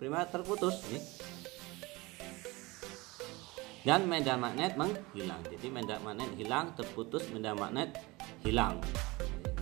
terputus nih. Dan medan magnet menghilang. Jadi medan magnet hilang, terputus, medan magnet hilang.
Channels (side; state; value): left; quieter; 22.9 dB